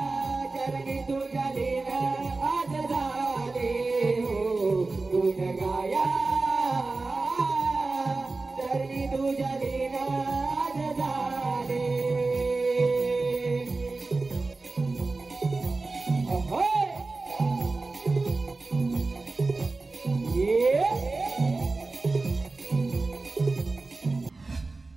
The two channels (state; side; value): quieter; left; 3.5 dB